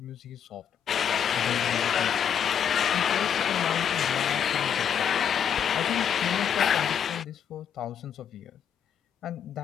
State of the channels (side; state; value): right; quieter; 8.4 dB